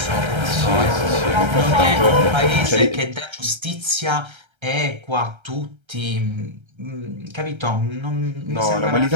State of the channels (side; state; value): left; late; 1.3 ms